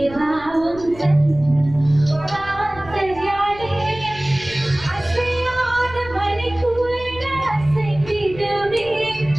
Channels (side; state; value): left; noise; rumble, 17 dB below the sound